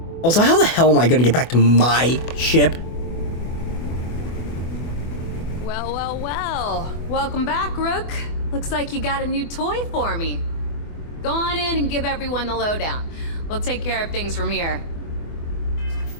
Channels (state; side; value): late; right; 24 ms